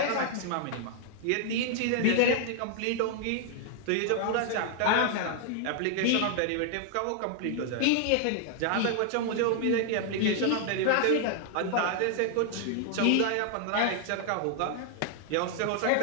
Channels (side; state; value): both; different; correlation 0.00